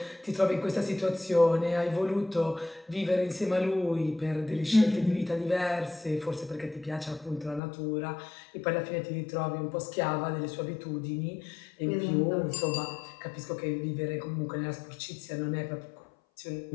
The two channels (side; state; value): right; drops out; at 7.6 s